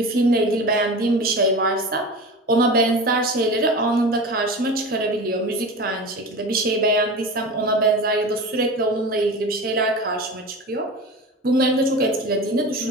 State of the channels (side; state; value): both; normal; correlation 0.31